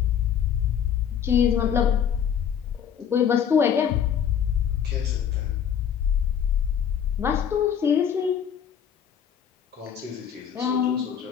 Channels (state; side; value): quieter; right; 8.4 dB